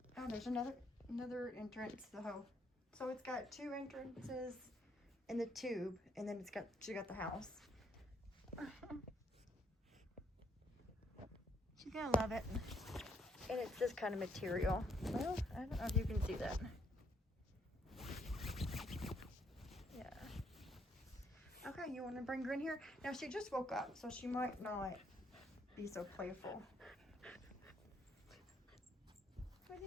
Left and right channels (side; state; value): both; normal; correlation 0.71